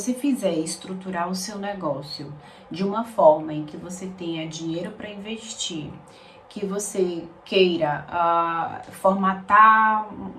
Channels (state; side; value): identical; both; correlation 1.00